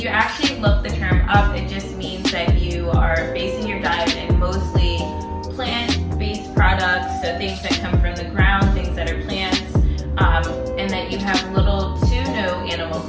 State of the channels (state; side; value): identical; both; correlation 1.00